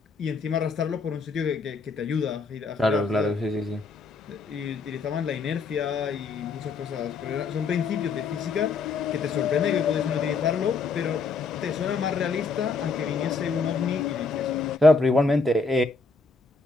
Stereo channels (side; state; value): right; quieter; 4.5 dB